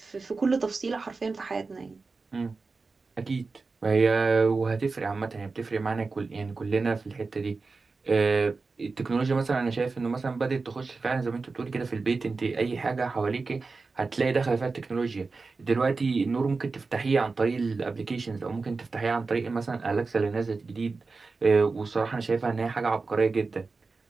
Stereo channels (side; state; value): left; quieter; 4.1 dB